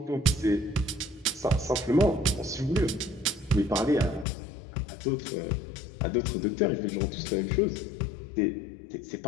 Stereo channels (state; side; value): drops out; right; at 4.2 s